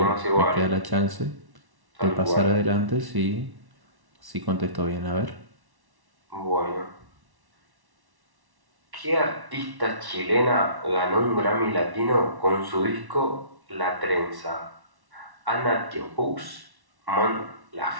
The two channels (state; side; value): late; left; 1.1 ms